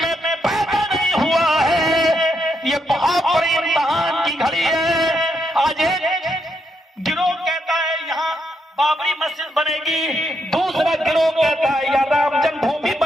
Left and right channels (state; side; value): normal; both; correlation 0.79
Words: میں پیدا نہیں ہوا ہے، یہ بہت بڑی امتحان کی گھڑی ہے۔ آج ایک گروہ کہتا ہے یہاں بابری مسجد بنے گی، دوسرا گروہ کہتا ہے یا رام جنم بھومی